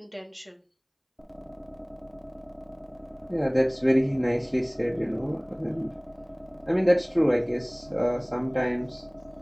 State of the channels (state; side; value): identical; both; correlation 1.00